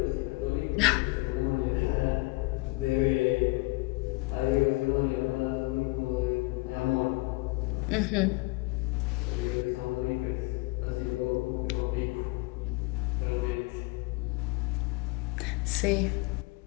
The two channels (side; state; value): right; quieter; 24.4 dB